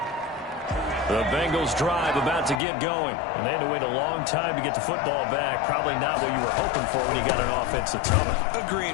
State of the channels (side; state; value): right; drops out; at 2.6 s